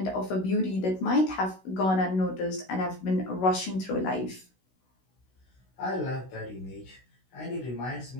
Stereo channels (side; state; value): right; late; 16 ms